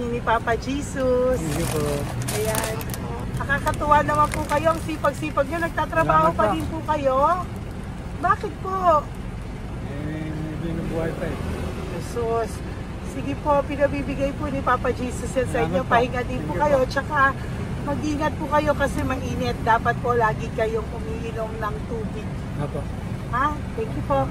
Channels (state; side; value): identical; both; correlation 1.00